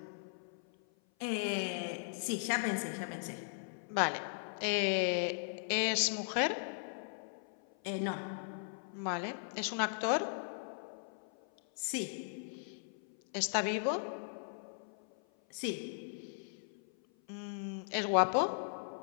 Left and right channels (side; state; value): right; silent; 53 dB below the other